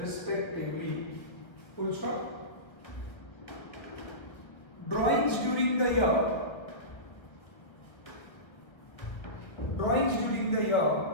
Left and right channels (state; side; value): late; right; 1.6 ms